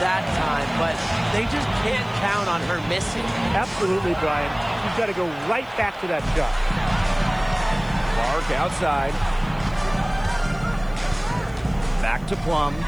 time, but they just can't count on her missing. Absolutely, Brian. You've got to go right back to that shot. Clark outside. Back to Plum.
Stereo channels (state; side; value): noise; right; hiss, 30 dB below the sound